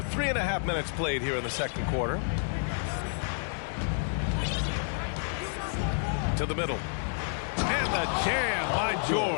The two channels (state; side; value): silent; right; 58 dB below the other